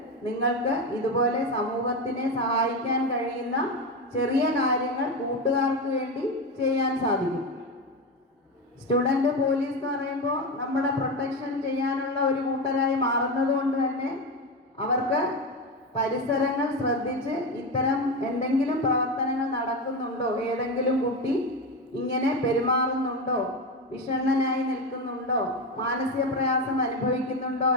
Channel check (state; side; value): normal; both; correlation 0.17